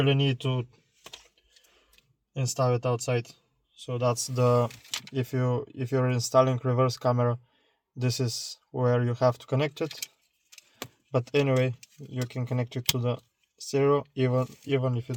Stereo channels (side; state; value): both; identical; correlation 1.00